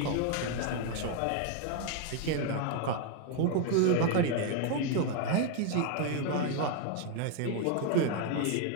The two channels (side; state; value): both; different; correlation 0.01